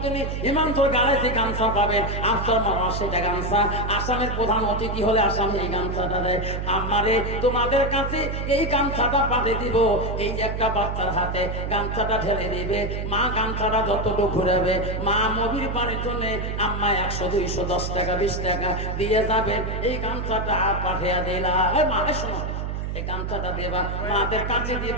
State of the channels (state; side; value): noise; right; hum, 3 dB below the sound